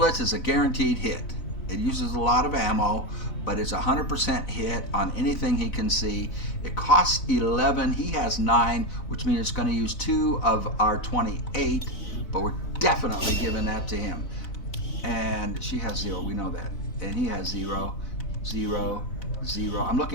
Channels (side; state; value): right; late; 4.0 ms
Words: is a guaranteed hit. It uses a lot of ammo, but it's 100% hit on anything he can see. It costs 11. He has 9, which means it's going to use 2 of our 28, but we're definitely giving that to him. And she has 0. We know that. And he has 0, 0, 0. I'm